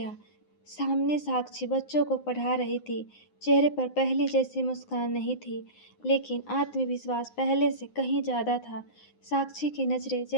सामने साक्षी बच्चों को पढ़ा रही थी। चेहरे पर पहले जैसी मुस्कान नहीं थी, लेकिन आत्मविश्वास पहले से कहीं ज़्यादा था। साक्षी की नज़रें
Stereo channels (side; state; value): right; late; 9.7 ms